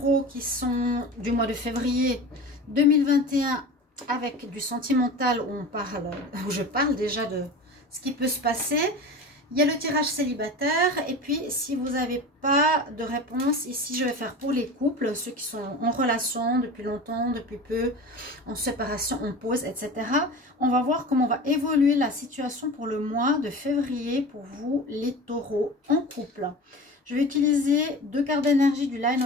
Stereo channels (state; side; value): normal; both; correlation 0.33